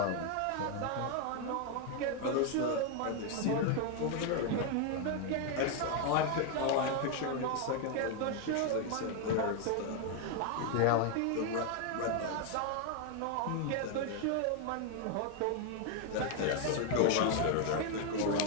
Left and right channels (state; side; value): different; both; correlation 0.01